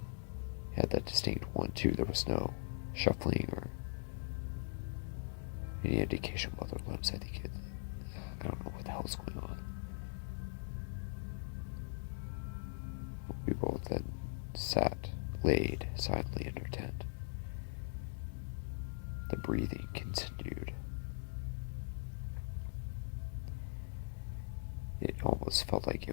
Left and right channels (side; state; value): right; silent; digital silence